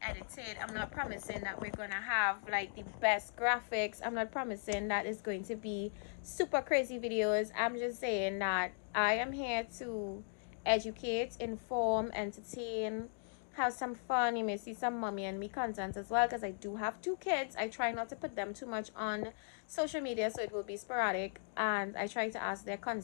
I'm not promising that we're gonna have like the best graphics. I'm not promising that it's going to be super crazy videos. I'm just saying that I am here to educate, inform, entertain, have some fun. You may see some mommy and me content as well, because I do have 2 kids. I try not to put them too much on social media, so it will be sporadic, and I try to ask their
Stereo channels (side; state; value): right; silent; digital silence